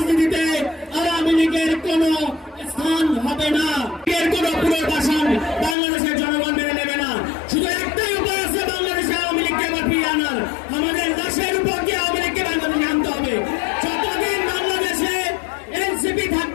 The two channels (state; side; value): drops out; right; at 5.8 s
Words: আওয়ামী লীগের কোন স্থান হবে না, এর কোন পুনর্বাসন বাংলাদেশের জনগণ মেনে নেবে না। শুধু একটাই উপায় আছে বাংলাদেশে আওয়ামী লীগকে আবার ফিরিয়ে আনার, আমাদের দেশের উপর দিয়ে আওয়ামী লীগকে বাংলাদেশে আনতে হবে। যতদিন বাংলাদেশে এনসিপি